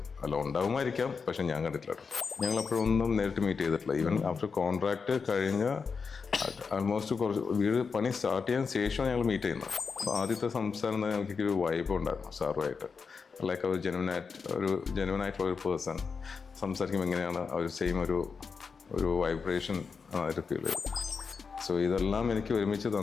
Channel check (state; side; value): quieter; right; 5.3 dB